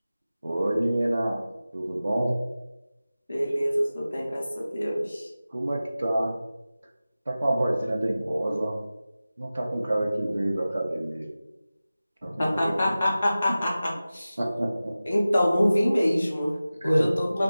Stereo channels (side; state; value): both; inverted; correlation -0.96